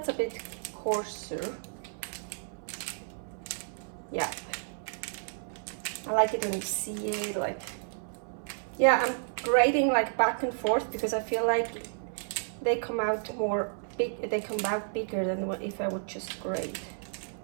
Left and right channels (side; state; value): left; silent; 57 dB below the other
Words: a bit coarser. Yeah. I like it when you see it, like, yeah, I'm grating like back and forth because I feel like they come out more big, they come out bigger than what if I would just grate.